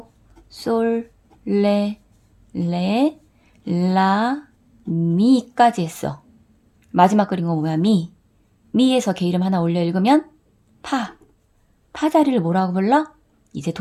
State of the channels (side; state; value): both; identical; correlation 1.00